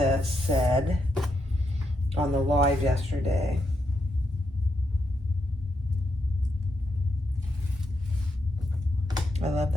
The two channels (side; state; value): both; normal; correlation 0.81